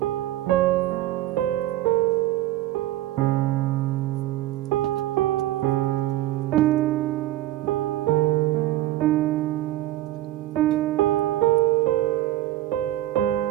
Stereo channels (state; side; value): quieter; left; 14.8 dB